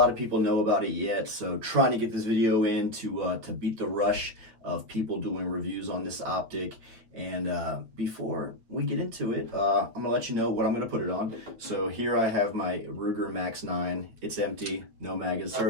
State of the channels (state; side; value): late; left; 8.7 ms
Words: of people know about it yet. So trying to get this video in to beat the rush of people doing reviews on this optic. And before we get into it, I'm gonna let you know what I'm gonna put it on. So here I have my Ruger Max 9. It's empty, no mag